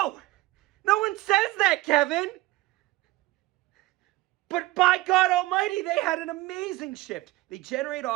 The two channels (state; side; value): quieter; left; 18.6 dB